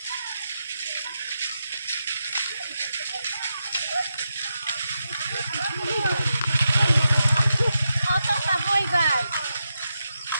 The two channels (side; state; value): both; inverted; correlation -0.87